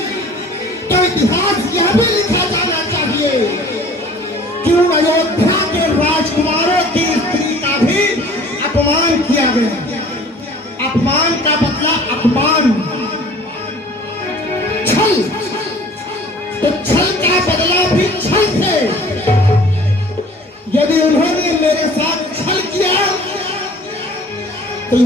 तो इतिहास यह भी लिखा जाना चाहिए कि उन अयोध्या के राजकुमारों की स्त्री का भी अपमान किया गया। अपमान का बदला अपमान, छल, तो छल का बदला भी छल से। यदि उन्होंने मेरे साथ छल किया तो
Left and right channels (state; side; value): normal; both; correlation 0.49